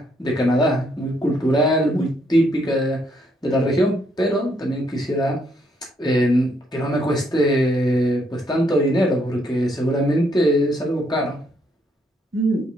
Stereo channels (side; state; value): both; normal; correlation 0.72